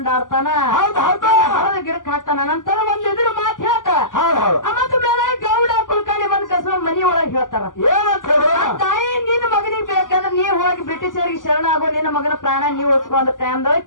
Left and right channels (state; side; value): late; right; 0.88 ms